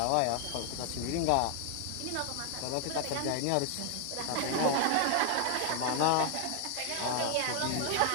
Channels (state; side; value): different; both; correlation 0.00